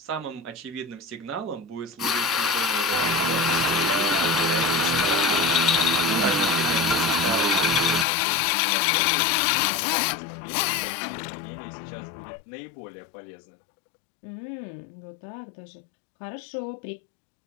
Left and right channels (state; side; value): drops out; right; at 8.1 s